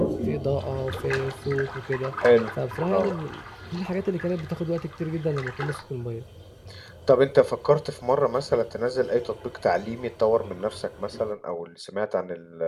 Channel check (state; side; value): identical; both; correlation 1.00